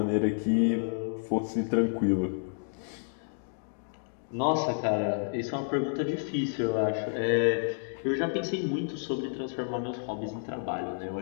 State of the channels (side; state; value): right; silent; digital silence